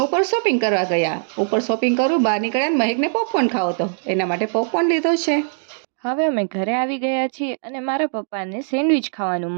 શોપિંગ કરવા ગયા. ઉપર શોપિંગ કરું બહાર નીકળ્યા મહેકને પોપકોર્ન ખાવો હતો, એના માટે પોપકોર્ન લીધો છે. હવે અમે ઘરે આવી ગયા છીએ અને મારા પપ્પાને સેન્ડવિચ ખાવાનું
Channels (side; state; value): left; silent; digital silence